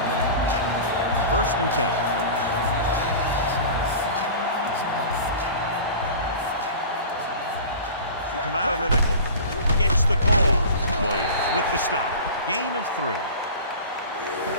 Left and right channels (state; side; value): inverted; both; correlation -0.36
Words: First and 10. They come out of the nickel. Gets the call. Williams with the stop. Gain of 3.